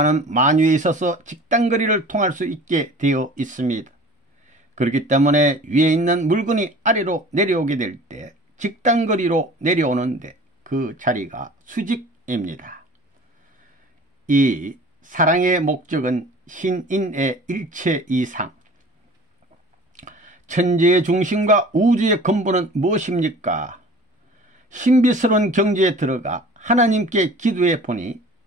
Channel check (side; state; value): both; normal; correlation 0.43